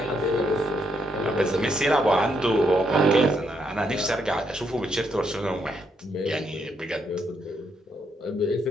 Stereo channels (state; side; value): normal; both; correlation 0.76